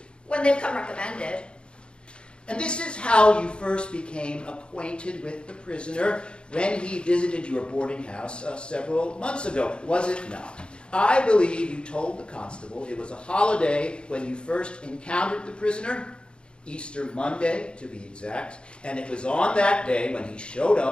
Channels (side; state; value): right; late; 0.054 ms